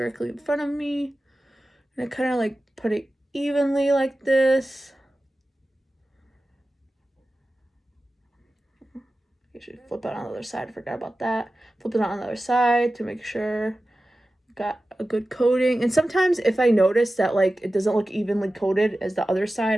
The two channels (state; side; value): normal; both; correlation 0.95